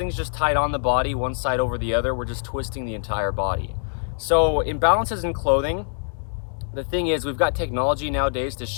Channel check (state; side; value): silent; right; digital silence